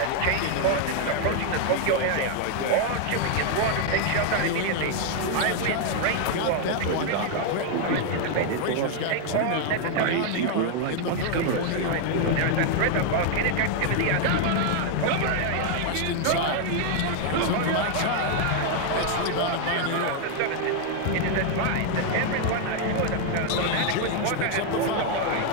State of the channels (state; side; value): different; both; correlation 0.00